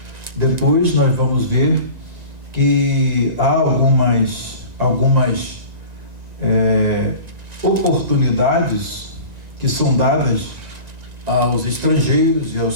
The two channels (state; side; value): late; left; 1.9 ms